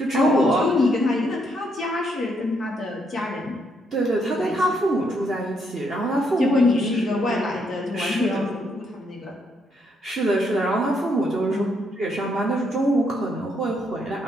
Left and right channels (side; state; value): both; normal; correlation 0.74